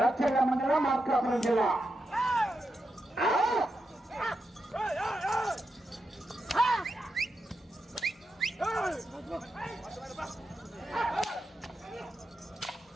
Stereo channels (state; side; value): normal; both; correlation 0.86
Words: మండలం మార్కాపురం జిల్లా.